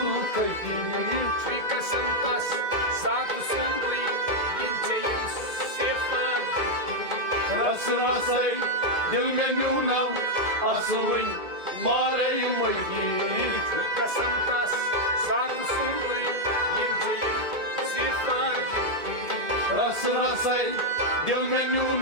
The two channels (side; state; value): left; late; 2.2 ms